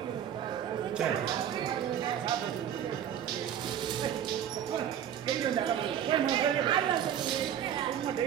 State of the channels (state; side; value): quieter; left; 9.8 dB